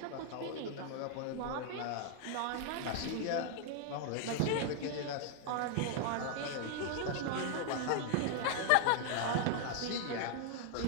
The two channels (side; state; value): both; different; correlation 0.00